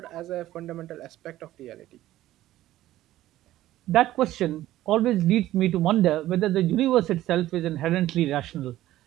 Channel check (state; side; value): quieter; left; 14.6 dB